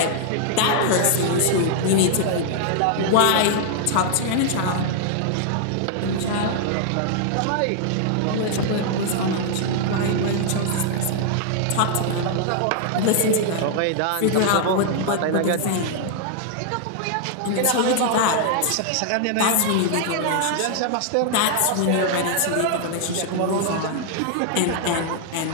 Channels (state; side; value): different; both; correlation 0.00